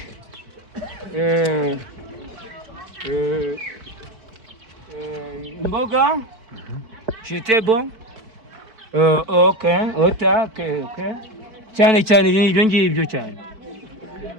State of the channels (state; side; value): late; left; 4.5 ms